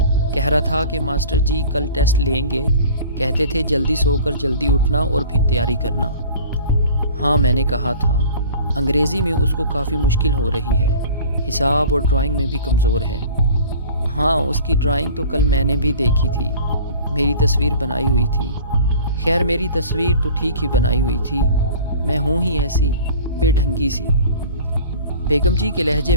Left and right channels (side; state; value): both; inverted; correlation -0.44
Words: کہہ رہا تھا کہ ماسٹر جی کل ٹیسٹ لیں گے، کہتے تھے جلدی سو کر جلدی اٹھنا اور پھر تیاری کرنا۔ ہاں، میں نے کہا تھا، انگریزی میں اس کو کافی مشکل ہو رہی ہے، حساب اور ڈرائنگ میں بھی کمزور ہے۔ ہاں، اس کی ڈرائنگ تو کل میں نے بھی دیکھی تھی، میری تصویر بنائی ہوئی تھی۔ خیر، میری تصویر تو ٹھیک ہی بنائی ہوئی تھی، میں ہوں ہی ایسی بے ڈھنگی سی۔ بیگم جی کے لہجے